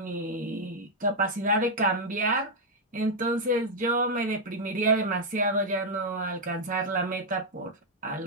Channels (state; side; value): normal; both; correlation -0.02